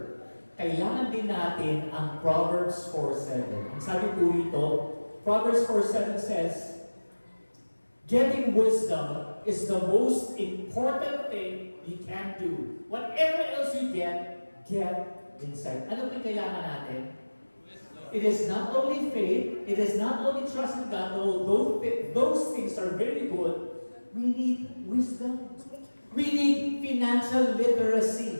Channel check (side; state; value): both; inverted; correlation -1.00